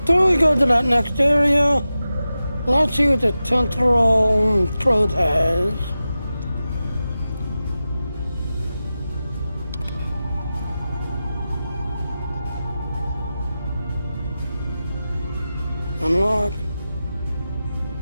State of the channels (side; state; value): both; inverted; correlation -0.93